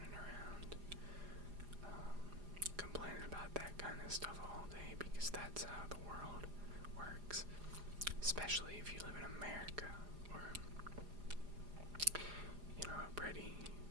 around complaining about that kind of stuff all day, because that's how the world works. Especially if you live in America, or, a pretty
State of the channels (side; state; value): left; late; 4.9 ms